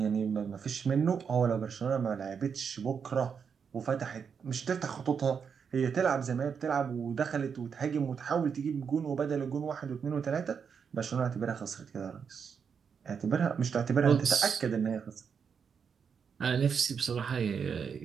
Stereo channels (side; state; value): left; quieter; 6.6 dB